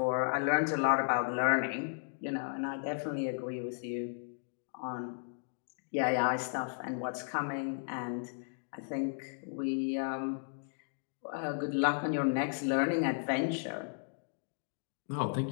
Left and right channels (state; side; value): silent; right; digital silence